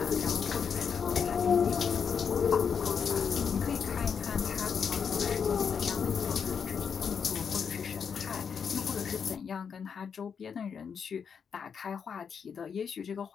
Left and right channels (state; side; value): quieter; right; 6.7 dB